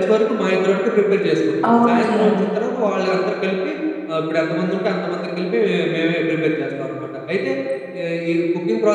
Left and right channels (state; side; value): identical; both; correlation 1.00